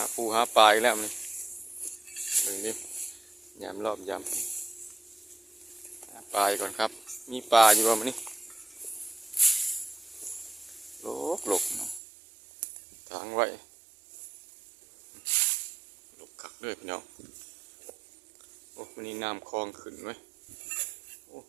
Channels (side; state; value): left; drops out; at 12.0 s